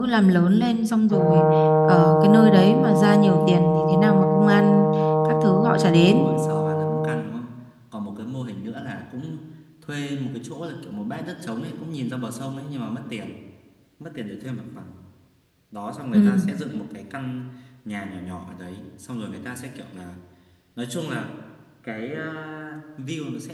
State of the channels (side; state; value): both; identical; correlation 1.00